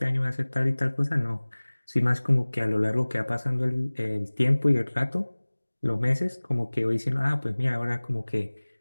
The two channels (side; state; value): both; inverted; correlation -1.00